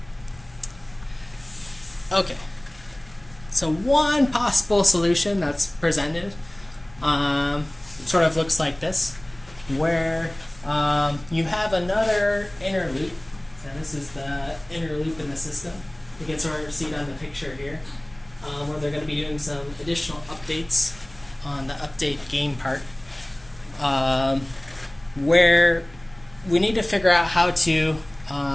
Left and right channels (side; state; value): left; noise; hum, 25 dB below the sound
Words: Okay, so one possible solution that's presented sort of looks like this, where you have another inner loop. So this is the inner loop in the system. You can sort of see it on the picture here, where they're going to be doing some additional updates on the update game part, where we need to figure out how to